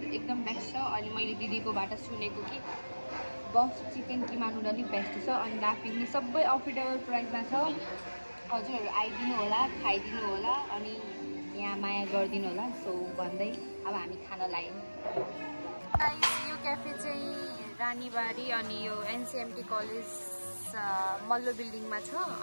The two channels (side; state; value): both; inverted; correlation -1.00